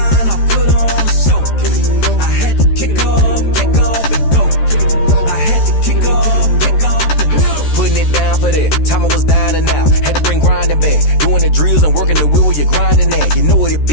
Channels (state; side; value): late; right; 13 ms